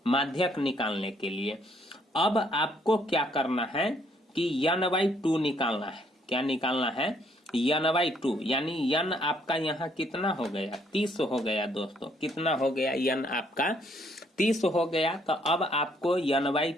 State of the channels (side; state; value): both; normal; correlation 0.68